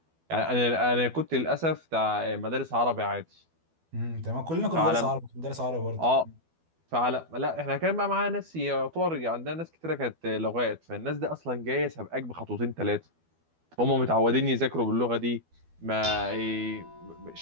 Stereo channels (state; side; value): late; left; 12 ms